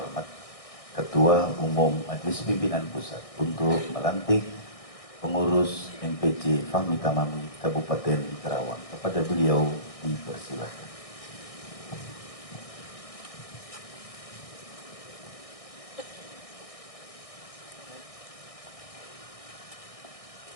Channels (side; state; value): right; late; 1.6 ms